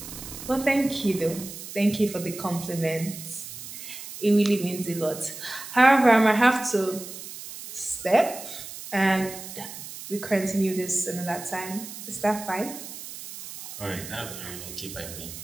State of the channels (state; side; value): noise; right; hiss, 11 dB below the sound